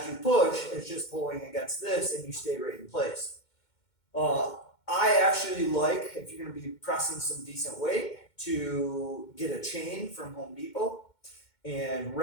you push, it's just pulling against this and you stay right in place. I actually like, if you're going to be pressing some decent weight, to get a chain from Home Depot and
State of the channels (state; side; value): late; right; 2.2 ms